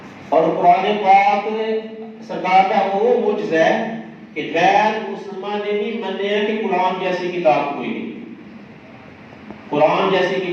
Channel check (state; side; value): identical; both; correlation 1.00